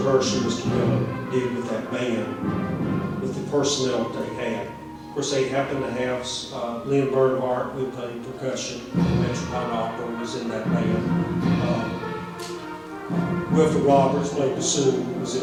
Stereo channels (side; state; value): both; identical; correlation 1.00